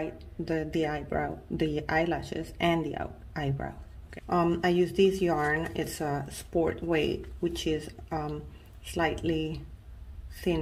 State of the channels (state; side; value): identical; both; correlation 1.00